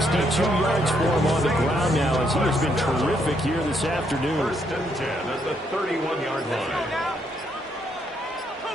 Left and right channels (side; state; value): both; normal; correlation 0.74